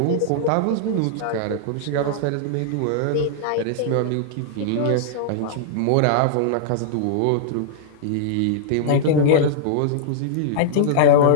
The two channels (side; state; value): both; different; correlation -0.01